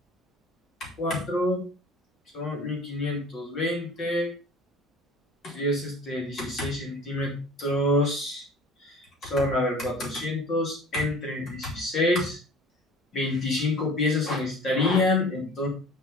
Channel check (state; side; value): normal; both; correlation 0.43